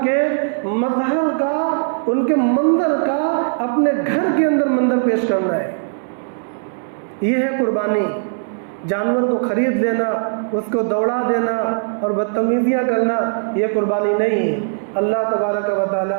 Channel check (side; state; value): left; silent; digital silence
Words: کے مظہر کا، ان کے منظر کا اپنے گھر کے اندر منظر پیش کرنا ہے۔ یہ ہے قربانی۔ جانور کو خرید لینا، اس کو دوڑا دینا اور بدتمیزیاں کرنا، یہ قربانی نہیں ہے۔ اللہ تبارک و